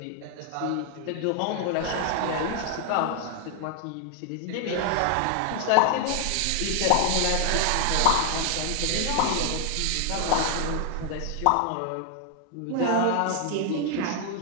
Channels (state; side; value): different; both; correlation 0.00